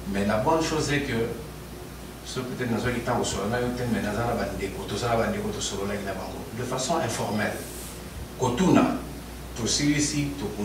mais la bonne chose est que, ce peut-être dans un temps où on a eu mais dans un de façon informelle. Kotuna, tout celui-ci, tout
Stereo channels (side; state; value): both; identical; correlation 1.00